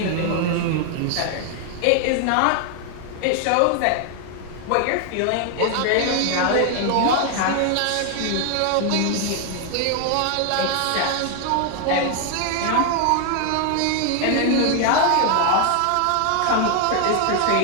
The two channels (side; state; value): both; different; correlation 0.00